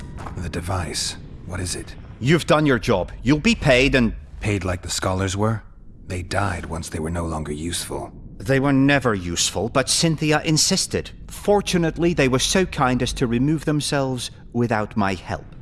The device. What is it? You've done your job. You'll be paid and... Paid like the scholars were? They died once they were no longer useful. They were never useful, but Cynthia insisted. Fortunately, they were so kind as to remove themselves without my help.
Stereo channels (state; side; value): identical; both; correlation 1.00